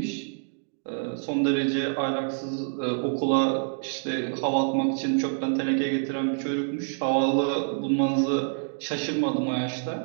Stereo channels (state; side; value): silent; left; digital silence